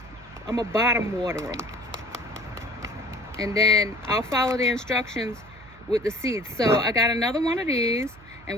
I'm gonna bottom water them, and then I'll follow the instructions with the seeds. So I got another one of these,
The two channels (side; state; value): right; noise; hum, 23 dB below the sound